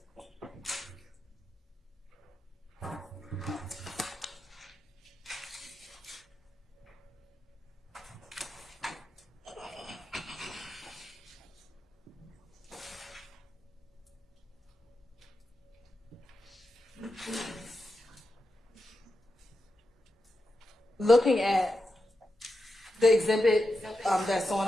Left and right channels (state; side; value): normal; both; correlation 0.88